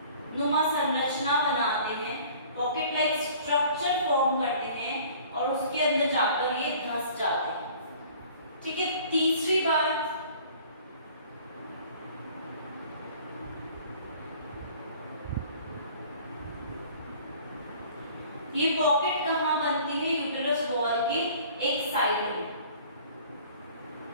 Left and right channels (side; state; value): both; inverted; correlation -0.50